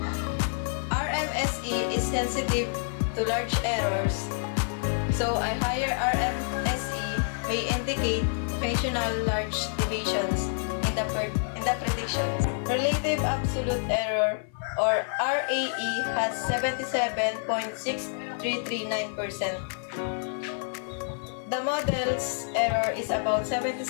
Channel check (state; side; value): silent; right; 56 dB below the other